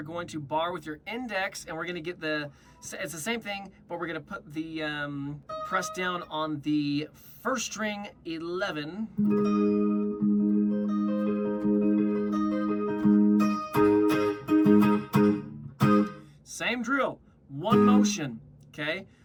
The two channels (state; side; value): identical; both; correlation 1.00